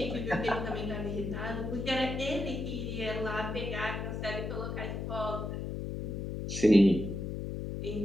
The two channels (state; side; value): noise; left; hum, 4 dB below the sound